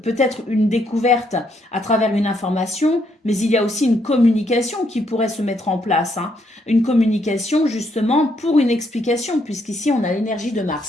peut-être une découverte à travers une information, mais il y a aussi une communication qui pourrait se mettre en place. Hein. Une communication, justement, pour une explication, puisqu'ici, on a l'énergie de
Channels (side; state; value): both; normal; correlation 0.74